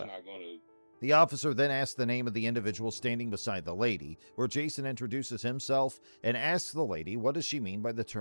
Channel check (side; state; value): both; inverted; correlation -1.00